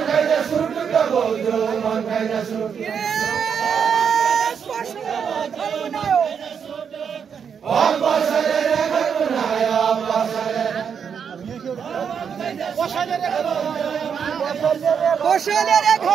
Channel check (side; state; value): left; quieter; 7.1 dB